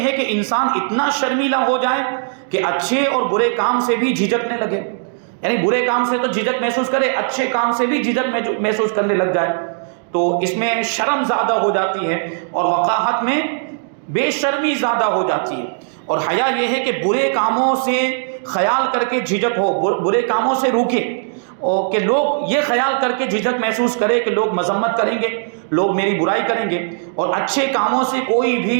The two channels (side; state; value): left; silent; digital silence